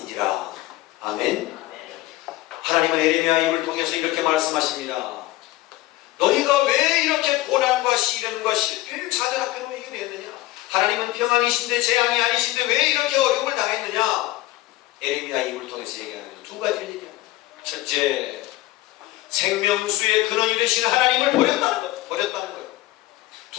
아멘. 하나님은 예레미야 입을 통해서 이렇게 말씀하십니다. 너희가 왜 이렇게 고난과 시련과 실패를 자들 앞에로 이겨냈느냐? 하나님은 평안이신데 재앙이 아니신데 왜 이렇게 어려움을 당했느냐? 예레미야 입을 통해서 얘기하는 두 가지를 얘기합니다. 첫째, 생명수의 근원이 되신 하나님을 버렸다는 거예요.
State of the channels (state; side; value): quieter; right; 17.5 dB